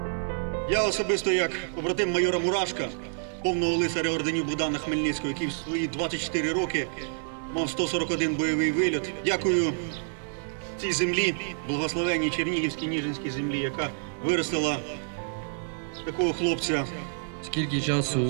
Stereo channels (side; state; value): left; silent; digital silence